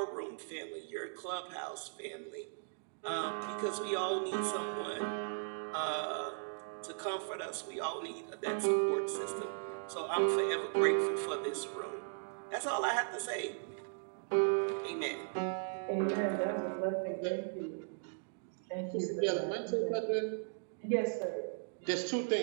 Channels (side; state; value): left; silent; digital silence